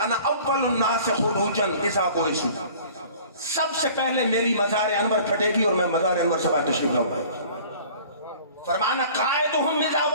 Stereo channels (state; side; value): inverted; both; correlation -0.48